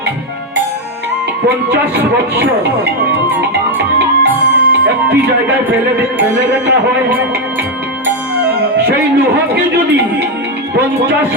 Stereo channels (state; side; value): normal; both; correlation 0.05